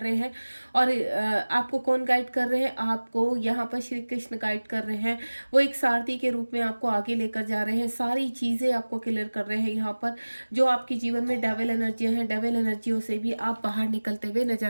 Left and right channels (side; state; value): both; inverted; correlation -1.00